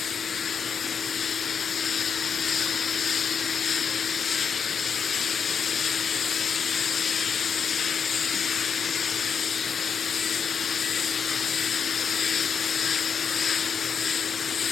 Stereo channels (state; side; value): quieter; right; 6.6 dB